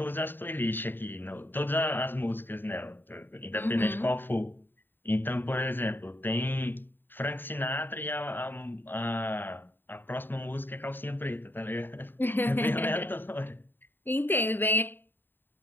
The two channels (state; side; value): late; right; 0.095 ms